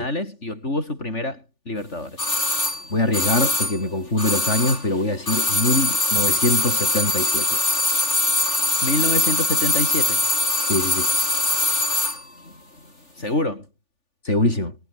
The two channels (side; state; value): right; late; 3.4 ms